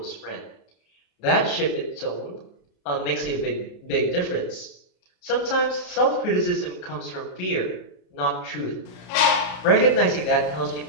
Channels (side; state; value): right; late; 34 ms